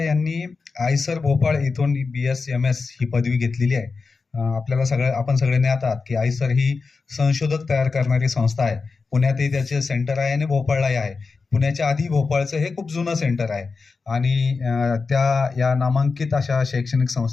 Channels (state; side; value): quieter; right; 4.5 dB